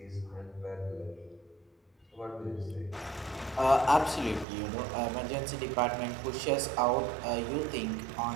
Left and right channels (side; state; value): left; drops out; at 4.5 s